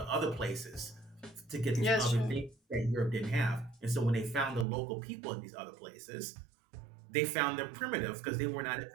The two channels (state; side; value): drops out; left; at 4.7 s